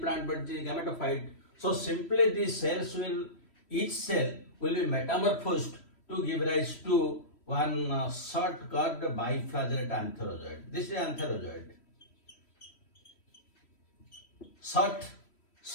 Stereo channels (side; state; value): right; late; 3.1 ms